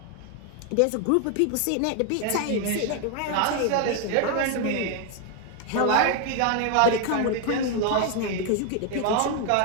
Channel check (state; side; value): different; both; correlation 0.01